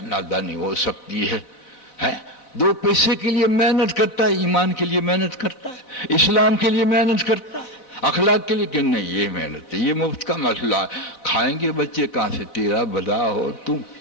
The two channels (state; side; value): late; right; 3.8 ms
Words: نادانی ہو سکتی ہے؟ 2 پیسے کے لیے محنت کرتا ہے، ایمان کے لیے محنت کرتا ہے، اسلام کے لیے محنت کرتا ہے، اخلاق کے لیے کہ نہیں یہ محنت ہے، یہ مفت کا مسئلہ ہے، کھائیں گے بچے کہاں سے، تیرا بھلا ہو،